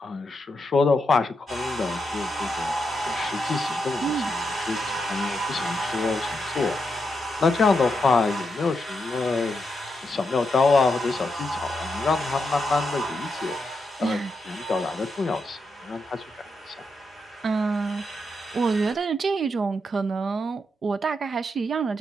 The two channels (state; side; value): normal; both; correlation 0.83